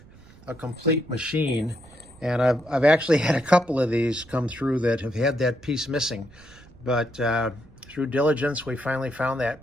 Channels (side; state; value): right; noise; rumble, 23 dB below the sound